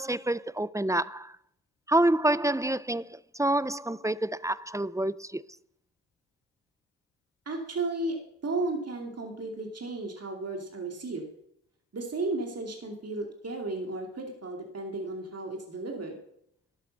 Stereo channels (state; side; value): normal; both; correlation 0.58